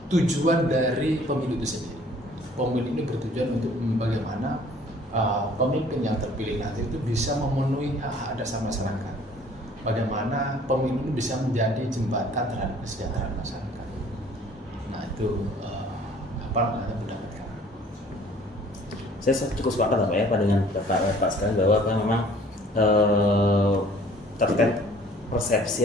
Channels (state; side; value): normal; both; correlation 0.54